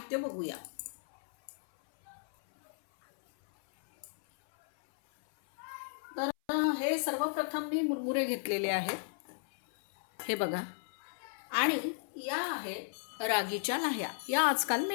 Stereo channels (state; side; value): silent; right; 55 dB below the other